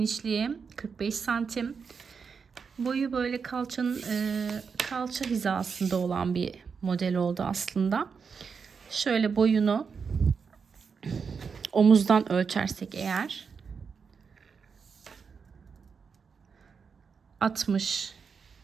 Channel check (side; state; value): left; quieter; 5.8 dB